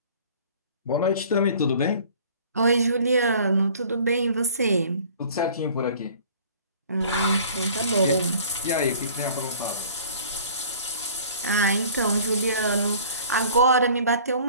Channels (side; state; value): both; inverted; correlation -0.49